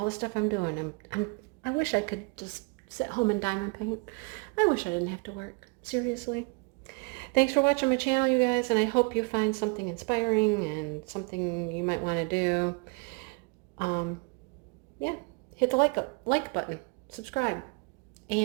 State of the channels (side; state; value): left; quieter; 32.2 dB